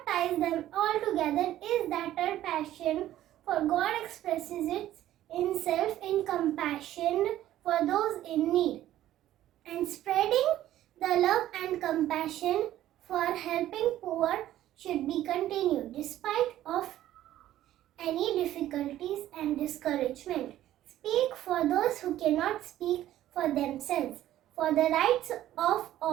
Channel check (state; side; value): quieter; left; 13.3 dB